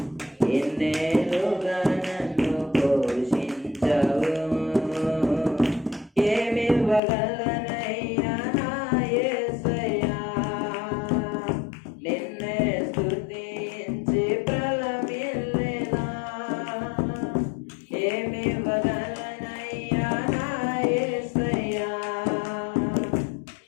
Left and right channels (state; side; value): drops out; right; at 7.0 s